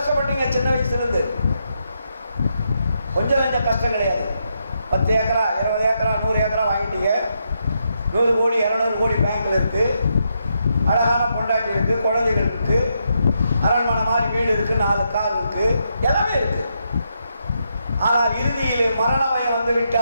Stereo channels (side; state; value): both; inverted; correlation -0.81